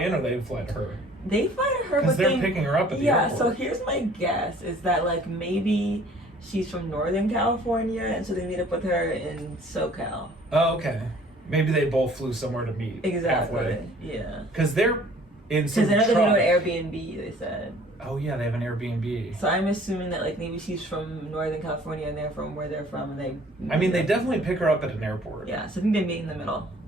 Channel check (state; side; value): normal; both; correlation 0.53